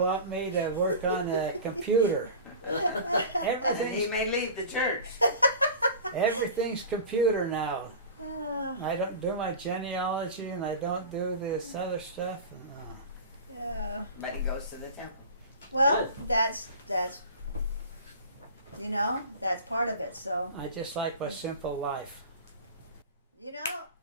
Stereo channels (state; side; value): inverted; both; correlation -0.35